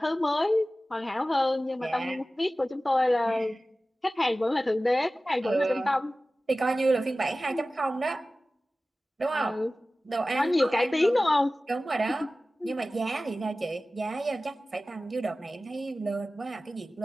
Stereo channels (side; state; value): both; normal; correlation 0.96